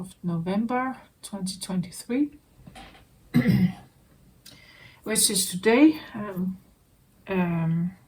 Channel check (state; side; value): identical; both; correlation 1.00